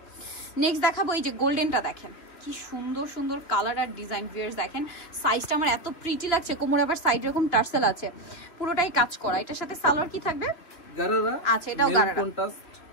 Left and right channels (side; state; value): right; late; 3.4 ms